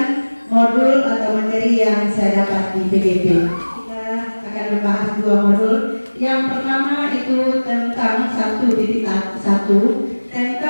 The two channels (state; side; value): inverted; both; correlation -1.00